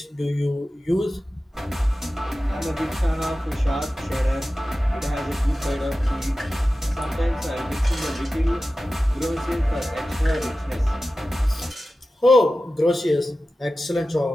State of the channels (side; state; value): both; normal; correlation 0.95